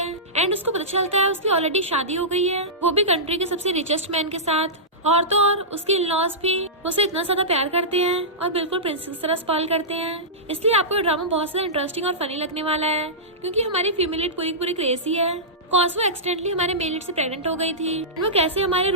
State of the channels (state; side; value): normal; both; correlation -0.16